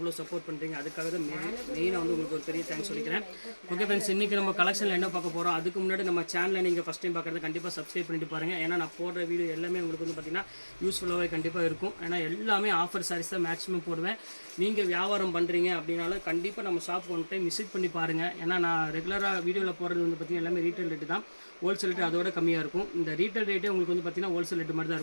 சப்போர்ட் பண்ணுறீங்க. அதுக்காக தான் மெயினாக வந்து உங்களுக்கு ஒரு பெரிய தேங்க்ஸ் சொல்லிக்கிறேன். ஓகே ஃப்ரெண்ட்ஸ், இன்றைக்கி நம்ம கலெக்ஷனில் என்ன பார்க்க போகிறோம், அதுக்கு முன்னாடி நம்ம சேனலில் நீங்கள் ஃபஸ்ட் டைம் பார்க்குறது கண்டிப்பாக சப்ஸ்கிரைப் பண்ணிட்டு பாருங்கள். ஏன்னா நான் போடுற வீடியோ எல்லாமே உங்களுக்கு வந்து பார்த்திங்கன்னா யூஸ்ஃபுல்லாகவே கண்டிப்பாக இருக்கும். ஏன்னா எல்லாமே ஆஃபர் சாரீஸ் தான் மேக்ஸிமம் போடுவேன். நீங்கள் வியாபாரம் பண்ணுறீங்க அப்படின்னாலும் கண்டிப்பாக நம்ம ஷாப் ஒன் டைம் விசிட் பண்ணி பாருங்கள். ஏன்னா நான் ரெகுலராக வீடியோவில் போகிறது வந்து பார்த்திங்கன்னா எல்லாமே ரீட்டைல் ரேட்டு தான். ஹோல்சேல் ரேட்டு அதோட கம்மியாக இருக்கும். இந்த ரீட்டைல் ரேட்டே உங்களுக்கு வந்து பார்த்திங்கன்னா ஹோல்சேல் ரேட்டு மாதிரி தான்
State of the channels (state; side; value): inverted; both; correlation -1.00